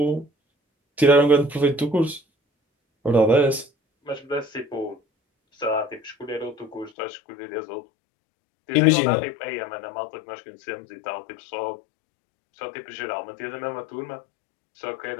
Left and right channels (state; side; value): drops out; right; at 6.9 s